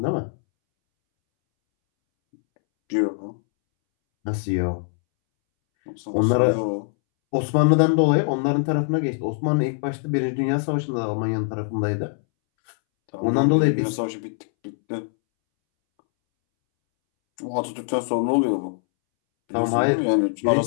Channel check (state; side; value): silent; right; 63 dB below the other